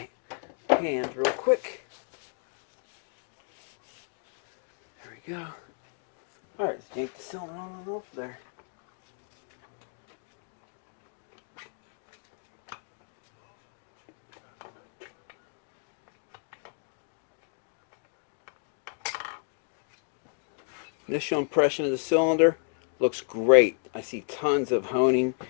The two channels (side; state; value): right; silent; 56 dB below the other